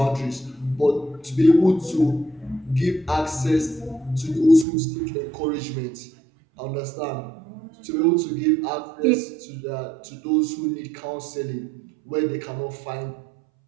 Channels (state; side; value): drops out; left; at 4.7 s